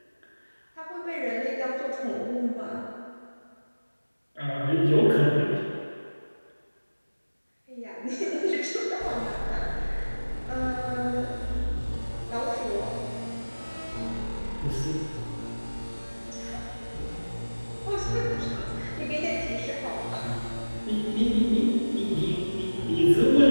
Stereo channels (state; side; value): inverted; both; correlation -1.00